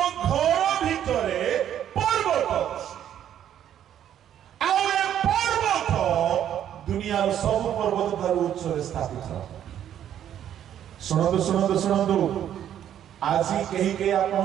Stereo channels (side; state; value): left; quieter; 10.4 dB